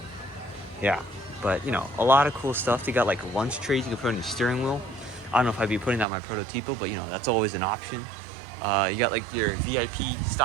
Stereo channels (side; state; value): left; drops out; at 6.1 s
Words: yeah, but a lot of cool stuff. They got like lunch trays you can put on your steering wheel. I don't know if I'd be putting that on my Prototipo, but that's always an option. You got like your VIP